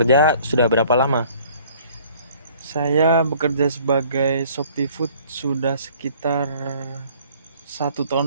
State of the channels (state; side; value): inverted; both; correlation -0.55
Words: sudah berapa lama? Saya bekerja sebagai Shopee Food sudah sekitar 1